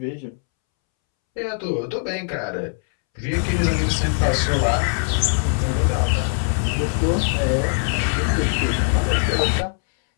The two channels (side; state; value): right; silent; 65 dB below the other